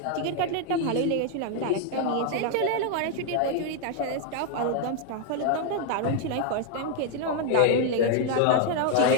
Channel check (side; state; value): both; different; correlation 0.00